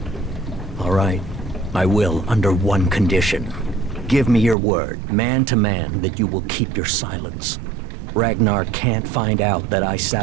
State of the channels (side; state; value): left; drops out; at 4.5 s